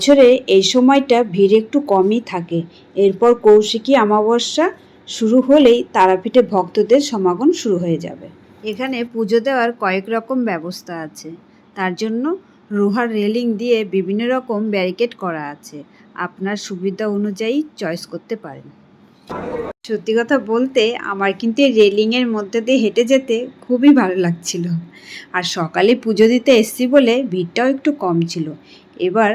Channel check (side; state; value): both; identical; correlation 1.00